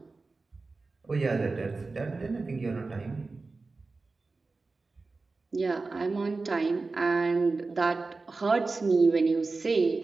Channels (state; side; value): quieter; left; 3.8 dB